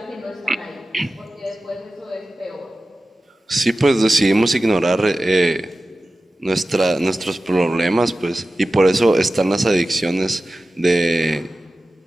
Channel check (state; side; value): normal; both; correlation 0.95